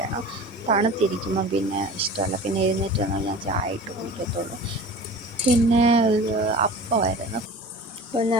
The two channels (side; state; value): both; normal; correlation 0.38